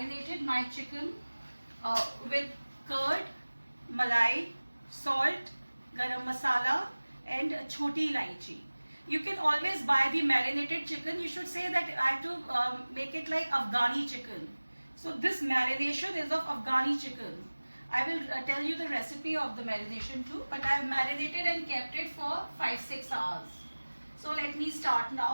my chicken with curd, malai, salt, garam masala and choti ilaichi. You can always buy the marinated chicken. You should say that I have to make it like Afghani chicken. So this marination is of Afghani chicken. I will tell you the recipe of the marination too, but I have marinated and kept it for 5-6 hours. So let me start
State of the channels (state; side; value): inverted; both; correlation -1.00